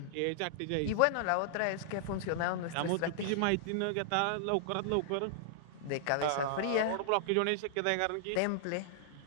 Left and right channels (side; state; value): both; different; correlation -0.01